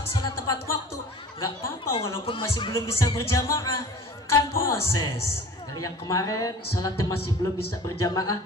sholat tepat waktu. Gak apa-apa walaupun masih belum bisa berjamaah, kan proses. Dari yang kemarin sholatnya masih belum bisa berjamaah,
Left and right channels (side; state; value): both; normal; correlation 0.43